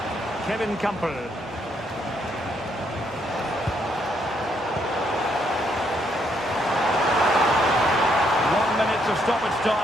Kevin Campbell. Of stoppage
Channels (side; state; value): both; normal; correlation 0.73